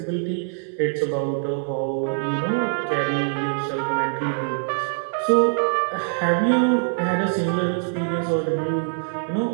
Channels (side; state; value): left; silent; digital silence